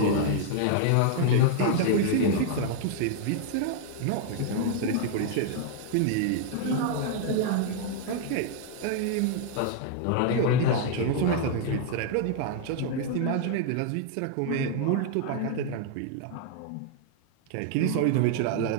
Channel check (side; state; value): both; different; correlation 0.00